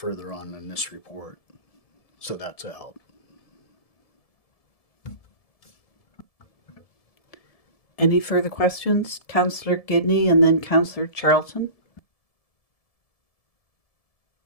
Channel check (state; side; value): late; right; 1.7 ms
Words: on in this report. So that's a help. Any further questions? Councillor Gidney and then Councillor Charlton.